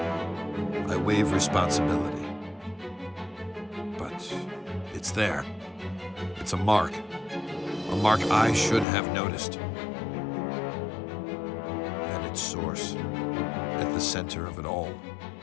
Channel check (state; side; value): drops out; right; at 8.8 s